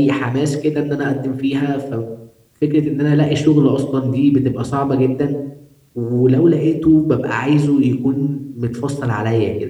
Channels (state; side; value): identical; both; correlation 1.00